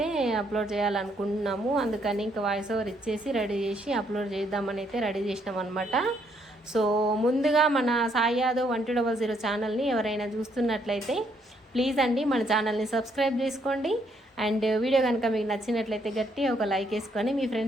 అప్లోడ్ చేయాలనుకుంటున్నాము, అందుకని ఇంకా వాయిస్ ఓవర్ ఇచ్చేసి రెడీ చేసి అప్లోడ్ చేద్దామని అయితే రెడీ చేసినాం అనమాట. సో ముందుగా మన సాయి యాదవ్ 1200 ఛానల్ని ఎవరైనా చూస్తున్నట్లయితే ప్లీజ్ అండి మన ఛానల్ని సబ్స్క్రైబ్ చేసుకోండి. అండ్ వీడియో కనుక మీకు నచ్చినట్లయితే గట్టి ఒక లైక్ వేసుకొని మీ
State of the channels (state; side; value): normal; both; correlation 0.71